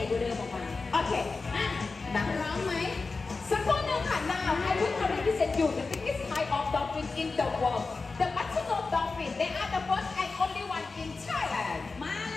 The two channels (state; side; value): quieter; right; 4.0 dB